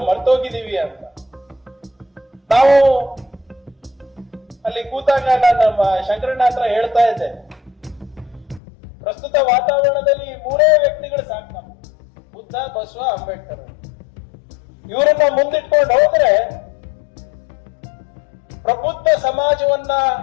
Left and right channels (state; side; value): drops out; right; at 8.6 s